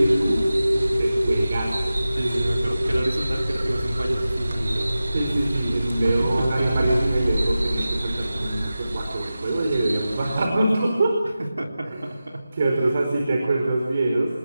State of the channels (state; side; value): inverted; both; correlation -0.94